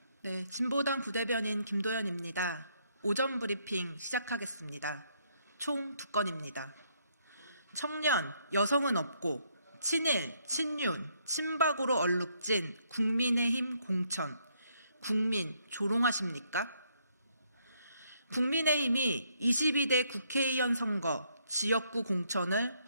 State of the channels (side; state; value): both; inverted; correlation -0.71